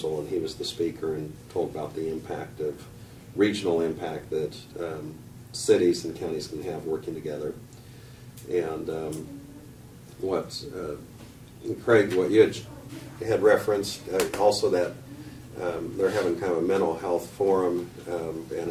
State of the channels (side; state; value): both; identical; correlation 1.00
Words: and he was the speaker and told about the impact of regional impact that cities and counties can have working together. And Craig, what you had referenced, also that they're having kind of a mental health forum, and